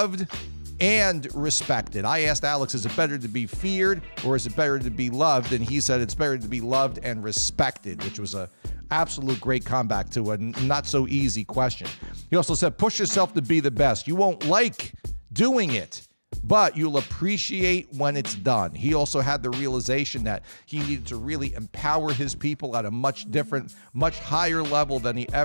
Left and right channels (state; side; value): inverted; both; correlation -1.00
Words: and respected. I asked Alex, is it better to be feared or is it better to be loved? And he said it's better to be loved and respected, which was a absolute great comeback to a not so easy question. He also said, push yourself to be the best. You won't like doing it, but you'll appreciate when it's done. He also had the realization that he needed to really empower his people at a much different, much higher level than he